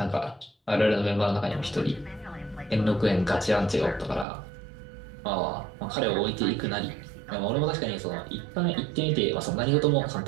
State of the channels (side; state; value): left; drops out; at 4.2 s